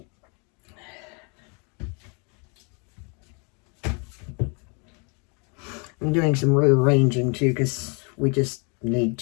I'm doing some rearranging too because we just need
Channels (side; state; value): right; quieter; 34.4 dB